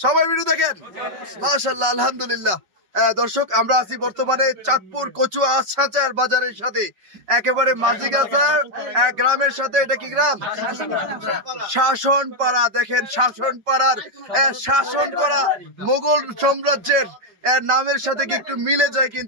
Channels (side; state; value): left; late; 5.3 ms